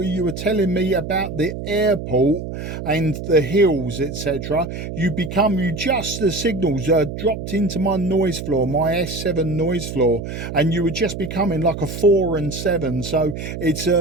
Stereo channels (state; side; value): noise; right; hum, 7 dB below the sound